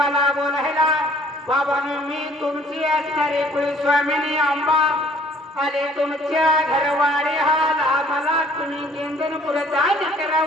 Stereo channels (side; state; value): both; normal; correlation 0.57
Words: बोलायला बाबांनो मी तुमची असणारी कुलस्वामिनी आंबा आले तुमच्या घरवाडे हाल आम्हाला तुम्ही गेंदनपुर दान